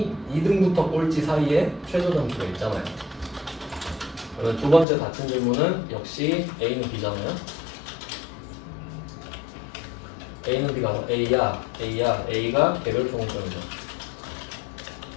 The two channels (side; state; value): right; drops out; at 4.9 s